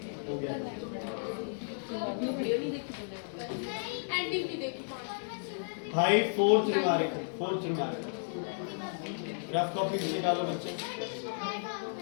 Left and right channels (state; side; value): silent; right; digital silence